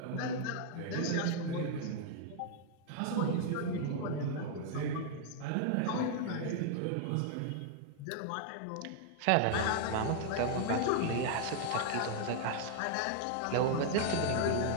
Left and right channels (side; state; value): both; different; correlation -0.01